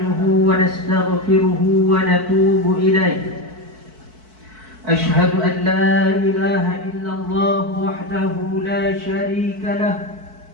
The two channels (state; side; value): late; left; 4.6 ms